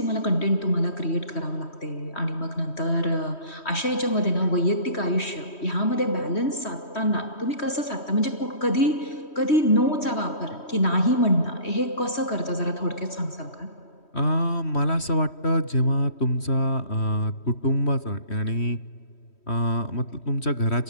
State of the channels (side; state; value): right; late; 3.1 ms